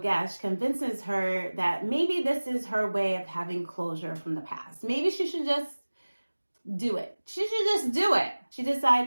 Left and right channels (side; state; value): both; inverted; correlation -1.00